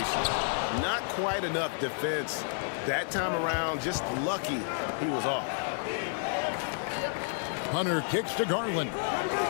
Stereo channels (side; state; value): right; silent; digital silence